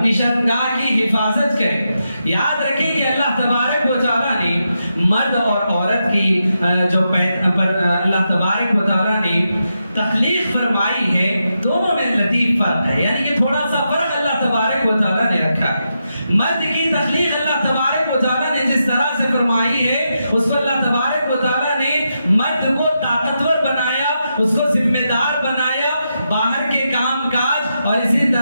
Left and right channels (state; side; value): inverted; both; correlation -0.85